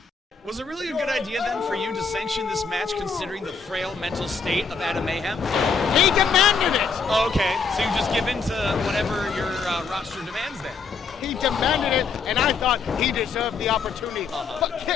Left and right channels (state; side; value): quieter; right; 5.2 dB